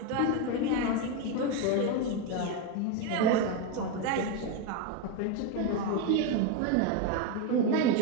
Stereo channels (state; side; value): different; both; correlation 0.03